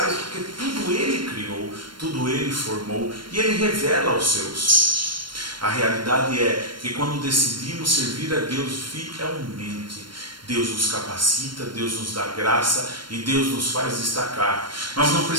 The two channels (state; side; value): late; left; 0.72 ms